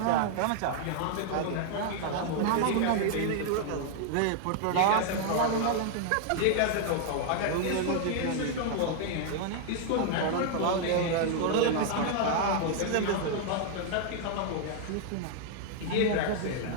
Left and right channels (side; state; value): both; different; correlation 0.00